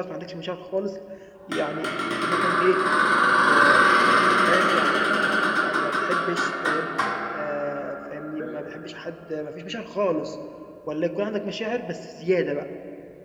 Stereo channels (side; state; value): both; identical; correlation 1.00